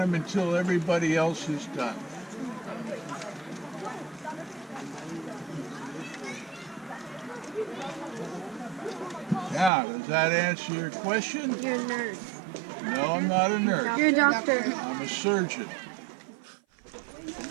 until everybody else is done. Now, does that answer your question? You're a nurse. No, I'm not a nurse. You're a doctor. I'm a surgeon.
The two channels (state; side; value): drops out; left; at 9.7 s